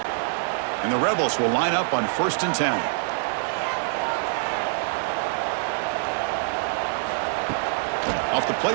And the Rebels will line up on 1st and 10.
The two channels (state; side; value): silent; left; digital silence